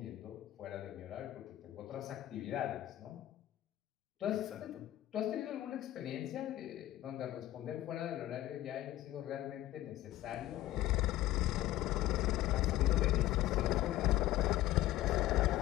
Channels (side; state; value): right; quieter; 15.0 dB